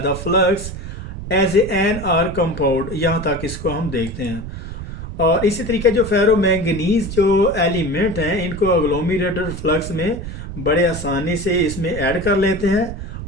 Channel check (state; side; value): noise; right; rumble, 9 dB below the sound